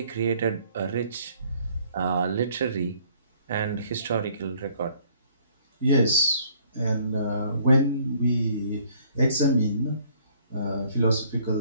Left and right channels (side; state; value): both; inverted; correlation -0.60